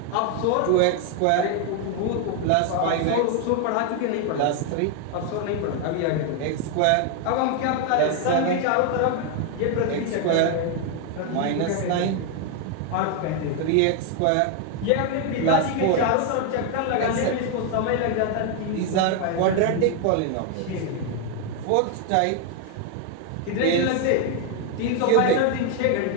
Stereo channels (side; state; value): both; different; correlation 0.01